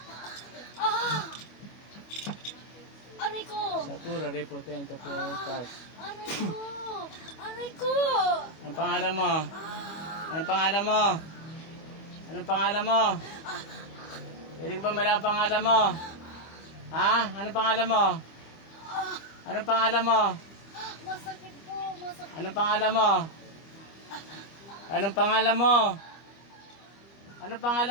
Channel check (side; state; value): right; late; 25 ms